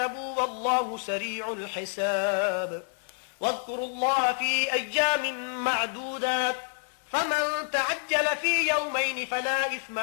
والله سريع الحساب واذكروا الله في أيام معدودات فمن تعجل في يومين فلا إثم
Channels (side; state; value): right; silent; 59 dB below the other